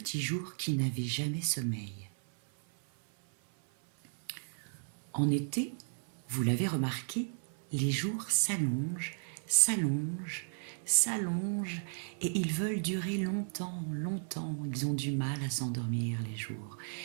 jour qui n'avait jamais sommeil. En été, vous l'avez remarqué, les jours s'allongent, et ils veulent durer longtemps. Ils ont du mal à s'endormir les jours,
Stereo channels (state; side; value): silent; left; 55 dB below the other